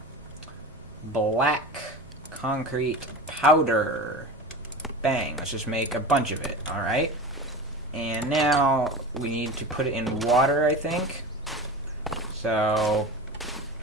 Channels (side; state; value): both; normal; correlation 0.30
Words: Black concrete powder. Bang. Let's just make a bunch of it. Alright. And now we need to put it in water, I think. So